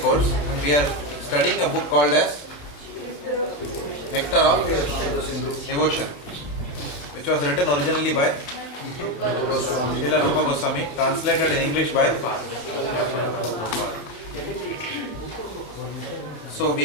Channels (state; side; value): late; right; 28 ms